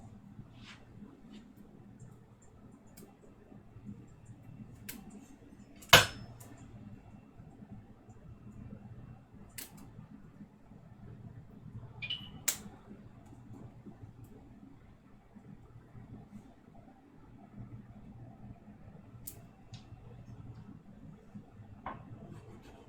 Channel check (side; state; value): both; identical; correlation 1.00